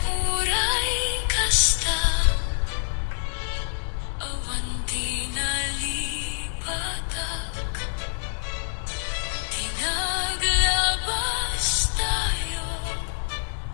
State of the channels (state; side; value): silent; right; digital silence